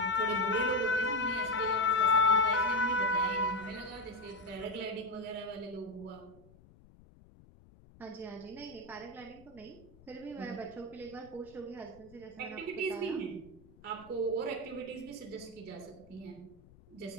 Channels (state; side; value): noise; left; rumble, 24 dB below the sound